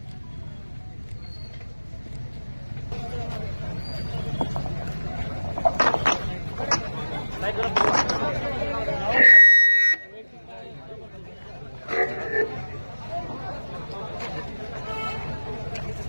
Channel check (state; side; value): inverted; both; correlation -1.00